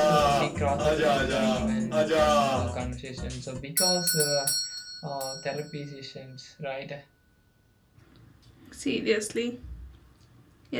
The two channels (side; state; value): both; identical; correlation 1.00